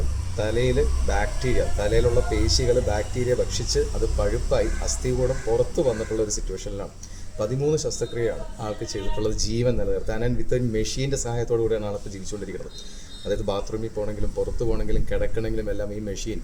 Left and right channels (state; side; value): identical; both; correlation 1.00